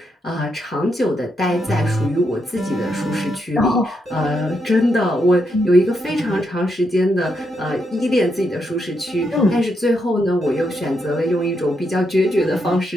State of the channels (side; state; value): both; normal; correlation 0.81